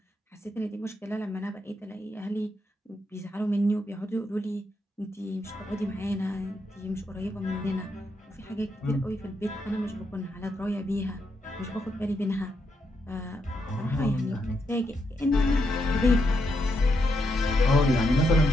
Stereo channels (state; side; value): normal; both; correlation 0.81